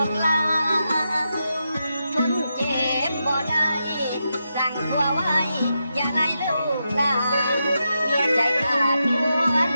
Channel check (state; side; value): inverted; both; correlation -0.86